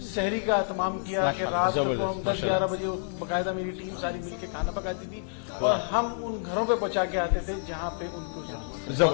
सहरी का एहतमाम किया कि रात को हम 10-11 बजे बाकायदा मेरी टीम सारी मिलके खाना पकाती थी और हम उन घरों पे पहुंचा के आते थे जहां पे उनको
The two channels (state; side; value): silent; right; digital silence